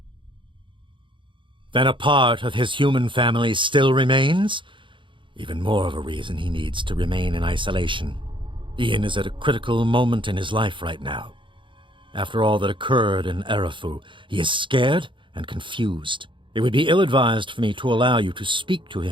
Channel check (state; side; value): late; left; 0.24 ms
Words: Then a part of his human family still remains? Even more of a reason he needs to remain in isolation. Ian is at a critical moment in his life right now. After all that occurred in Erafu, he is scared and confused. It would be ill-advised for me to allow you to speak to